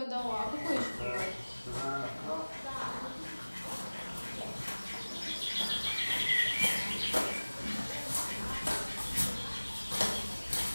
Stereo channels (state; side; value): inverted; both; correlation -1.00